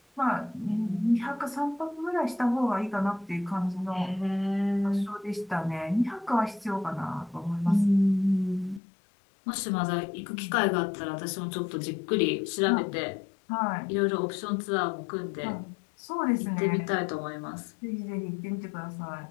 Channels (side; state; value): right; drops out; at 8.8 s